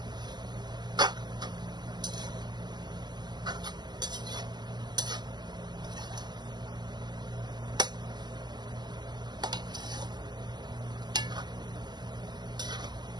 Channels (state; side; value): late; left; 0.21 ms